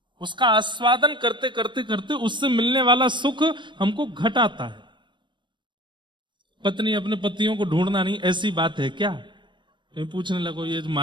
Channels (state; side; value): late; left; 0.23 ms